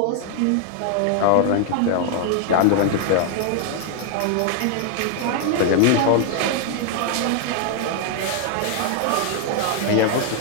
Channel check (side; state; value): both; different; correlation 0.00